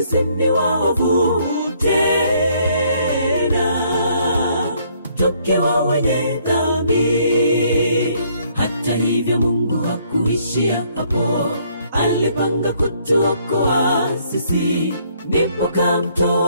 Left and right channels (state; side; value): inverted; both; correlation -0.66